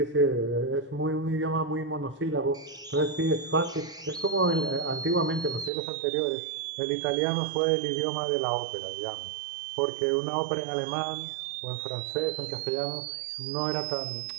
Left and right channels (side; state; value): left; drops out; at 5.7 s